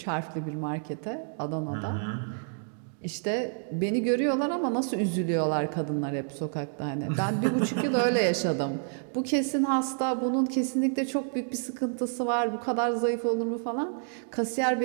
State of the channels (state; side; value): silent; left; digital silence